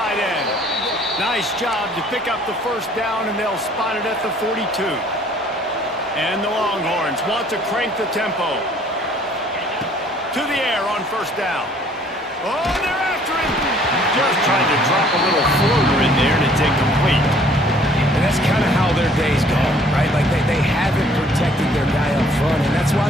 end. Nice job to pick up the 1st down, and they'll spot it at the 42. And the Longhorns want to crank the tempo. To the air on 1st down. Oh, they're after him. Just trying to drop a little floater in there, and it's incomplete. And that's kind of how their day's gone, right? Like they haven't protected their guy up front, and that's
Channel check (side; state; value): both; normal; correlation 0.58